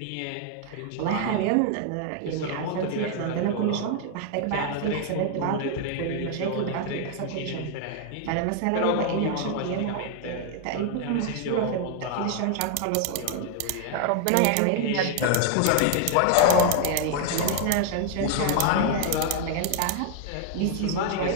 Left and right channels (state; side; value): different; both; correlation 0.00